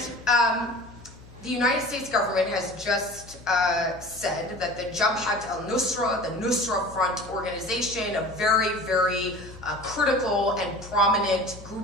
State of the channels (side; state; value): both; normal; correlation 0.40